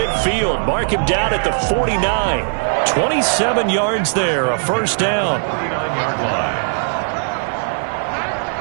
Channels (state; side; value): silent; left; digital silence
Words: Mark him down at the 49. 27 yards there, a first down.